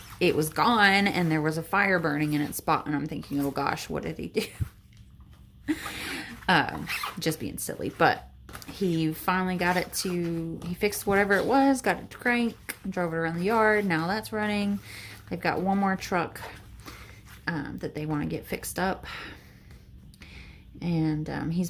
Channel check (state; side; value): identical; both; correlation 1.00